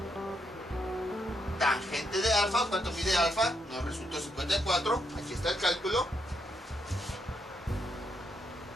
tangente de alfa. ¿Cuánto mide alfa? Nos resultó 54. Aquí está el cálculo.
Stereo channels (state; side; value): normal; both; correlation 0.79